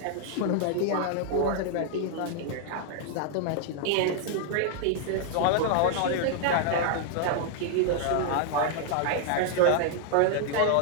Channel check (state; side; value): different; both; correlation 0.00